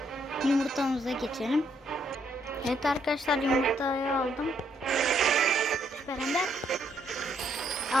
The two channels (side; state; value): both; normal; correlation 0.72